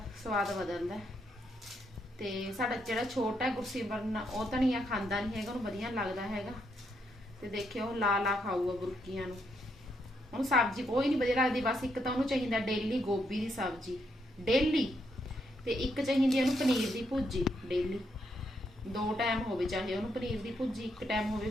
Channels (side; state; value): both; normal; correlation 0.77